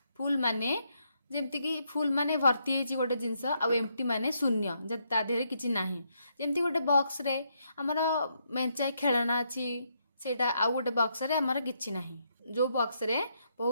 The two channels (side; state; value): both; inverted; correlation -0.77